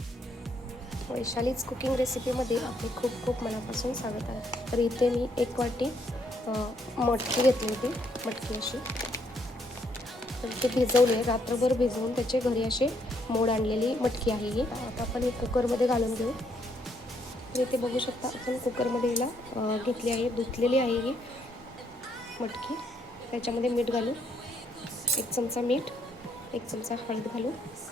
वैशालीज कुकिंग रेसिपीमध्ये आपले खूप खूप मनापासून स्वागत आहे. तर इथे मी 1 वाटी मटकी घेतली होती, मटकी अशी. तर ते भिजवली आहे, रात्रभर भिजवून त्याचे घरी असे मोड आणलेली मटकी आहे ही. आता आपण ही कुकरमध्ये घालून घेऊ. तर इथे बघू शकता आपण कुकरमध्ये हिला घेतली आहे, धुतलेली आहे ही मटकी. त्याच्यामध्ये मीठ घालू, 1 चमचा मीठ, 1 चमचा हळद घालू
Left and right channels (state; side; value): normal; both; correlation 0.72